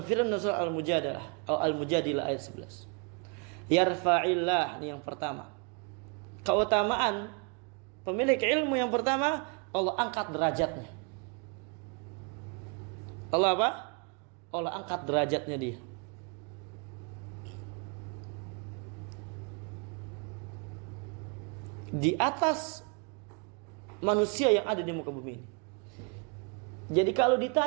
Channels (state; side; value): quieter; left; 34.2 dB